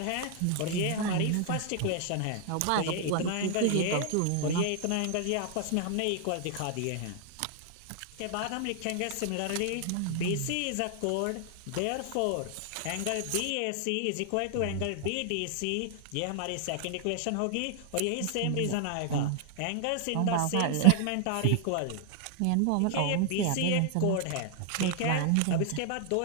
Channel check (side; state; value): both; different; correlation 0.00